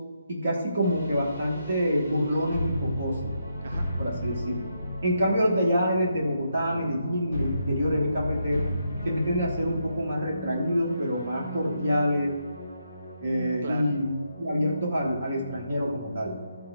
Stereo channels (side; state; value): both; inverted; correlation -0.80